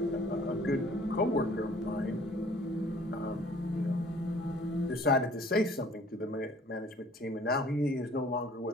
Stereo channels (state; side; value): normal; both; correlation 0.54